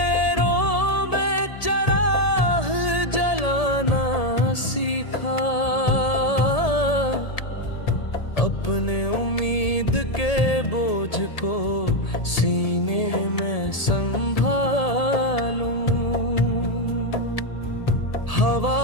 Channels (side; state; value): right; late; 1.8 ms